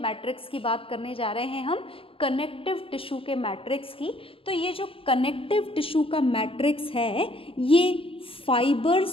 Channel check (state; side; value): late; right; 0.27 ms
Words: मैट्रिक्स की बात करने जा रहे हैं हम? कनेक्टिव टिश्यू के मैट्रिक्स की. तो ये जो कनेक्टिव टिश्यू का मैट्रिक्स है ये